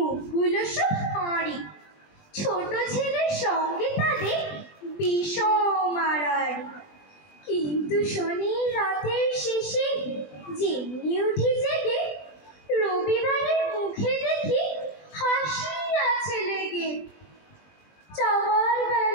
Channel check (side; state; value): right; late; 20 ms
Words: সব হাঁড়ি। ছোট ছেলের সঙ্গে তাদের বিষম আড়াআড়ি। কিন্তু শনি রাতের শেষে যেমনি উঠি জেগে, রবিবারের মুখে দেখি হাসি আছে লেগে। যাওয়ার